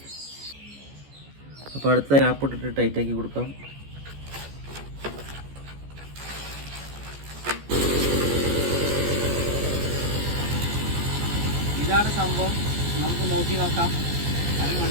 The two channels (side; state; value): left; late; 14 ms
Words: അപ്പോൾ അടുത്ത ഗ്യാപ്പ് ഇട്ടിട്ട് ടൈറ്റാക്കി കൊടുക്കാം. ഇതാണ് സംഭവം. നമുക്ക് നോക്കി നോക്കാം.